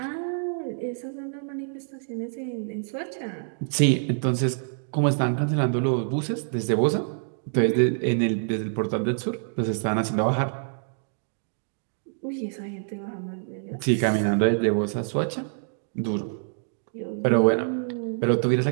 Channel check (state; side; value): silent; left; digital silence